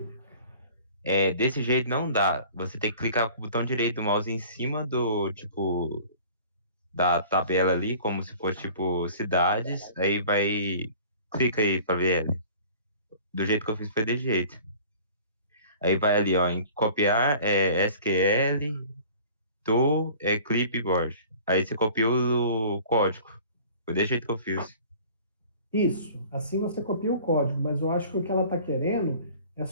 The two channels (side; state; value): both; inverted; correlation -0.47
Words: desse jeito não dá. Você tem que clicar com o botão direito do mouse em cima do, tipo, da tabela ali, como se fosse, tipo, cidades. Aí vai. Clica aí pra ver ela. Do jeito que eu fiz foi desse jeito. Aí vai ali, ó, em copiar SQL do clipboard. Aí você copiou o código. Foi desse jeito que eu fiz. Isso. Assim você copia o código, mas eu acho que o que ela está querendo é